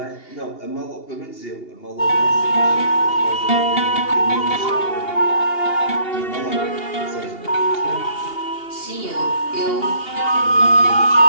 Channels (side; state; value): right; late; 2.8 ms